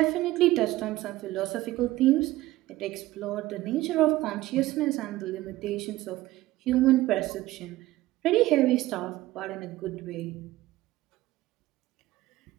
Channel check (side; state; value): left; quieter; 17.1 dB